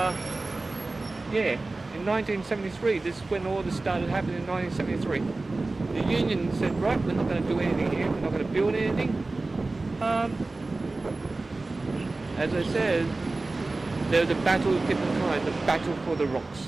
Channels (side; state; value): left; quieter; 3.3 dB